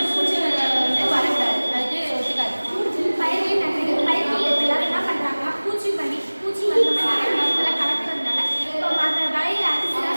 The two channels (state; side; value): inverted; both; correlation -1.00